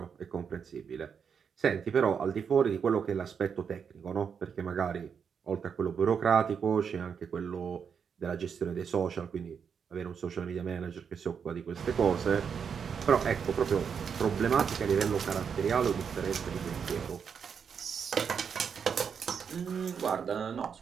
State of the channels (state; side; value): quieter; left; 6.8 dB